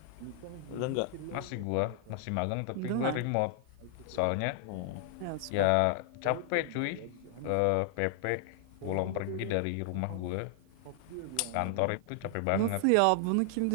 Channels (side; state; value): both; different; correlation 0.00